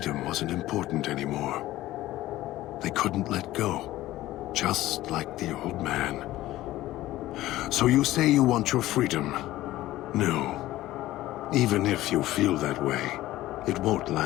wasn't important anymore. They couldn't let go, just like the old man. So you say you want your freedom? No. Even if you feel that way, it won't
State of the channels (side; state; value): right; quieter; 15.9 dB